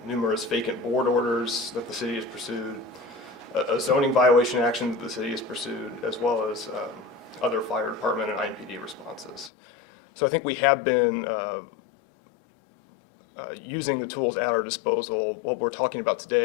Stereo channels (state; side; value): drops out; right; at 9.5 s